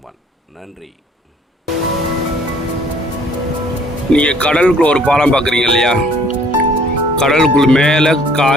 நன்றி. நீங்கள் கடலுக்குள்ள ஒரு பாலம் பார்க்குறீங்க இல்லையா? கடலுக்குள் மேலே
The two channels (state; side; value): normal; both; correlation 0.58